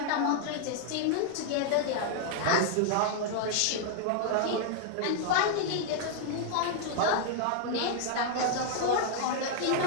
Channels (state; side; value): different; both; correlation 0.00